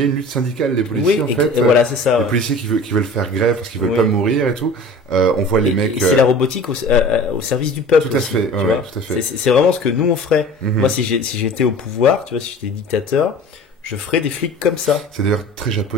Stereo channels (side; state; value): both; normal; correlation 0.41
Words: une lutte syndicale des policiers, en fait. Voilà, c'est ça. Les policiers qui veulent faire grève parce qu'ils veulent pas mourir et tout. On voit les mecs. Et c'est la robotique au service du peuple. Tout à fait. Tout à fait. C'est vraiment ce que nous on ferait. Moi, si j'étais au pouvoir, tu vois, si j'étais dictateur, je ferais des flics comme ça. C'est d'ailleurs très